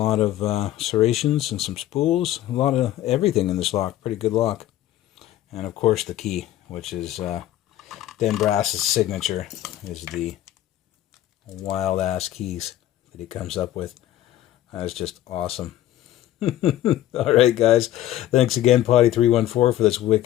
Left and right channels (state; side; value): quieter; right; 13.5 dB